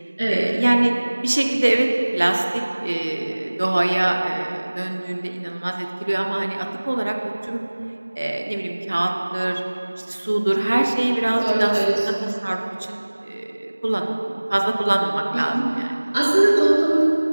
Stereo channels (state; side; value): inverted; both; correlation -1.00